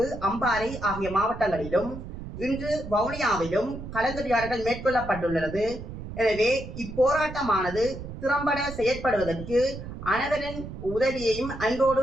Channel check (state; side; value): noise; right; rumble, 10 dB below the sound